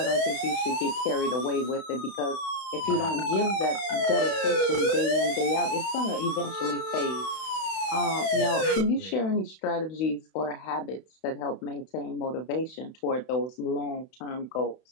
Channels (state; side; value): late; right; 31 ms